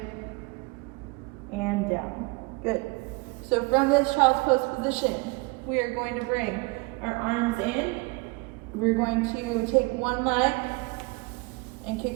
and down. Good. So from this child's pose position, we are going to bring our arms in. We're going to take one leg and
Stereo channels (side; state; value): left; quieter; 26.7 dB